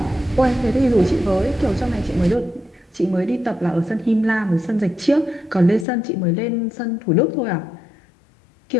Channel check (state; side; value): drops out; right; at 5.9 s